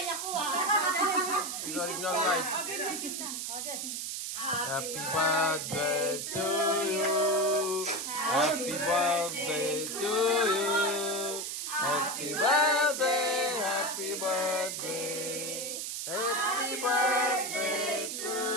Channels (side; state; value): right; noise; hiss, 4 dB below the sound